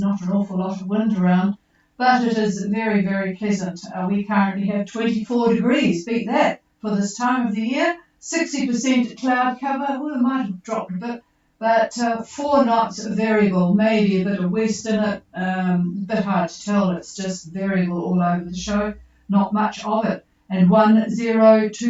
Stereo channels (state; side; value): identical; both; correlation 1.00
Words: an awful lot of wind around, but it is very, very pleasant. We currently have 24 degrees, beat that, for this time of the year. 60% cloud cover, well, it might have dropped a bit, but 4 knots variable, maybe a bit of west in it, a bit hard to tell, it's just variable all over the show, not much of it, and